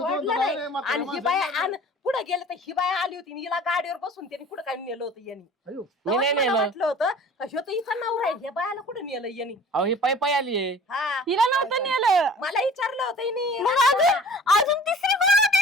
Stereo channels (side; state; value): both; normal; correlation 0.45